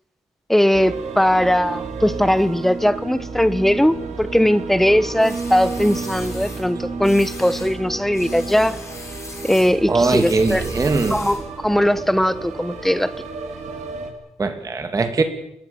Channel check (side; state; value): both; normal; correlation 0.95